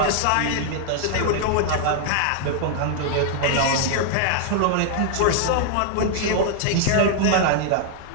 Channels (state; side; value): different; both; correlation -0.01